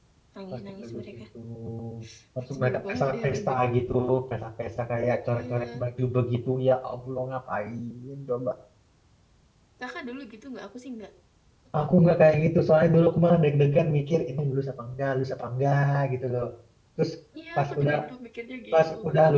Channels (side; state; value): both; identical; correlation 1.00